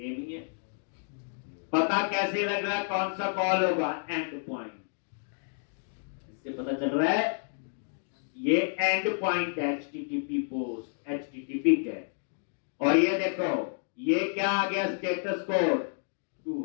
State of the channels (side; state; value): right; silent; digital silence